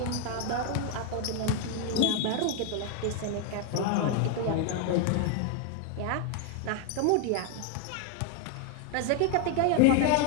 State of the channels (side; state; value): both; different; correlation 0.01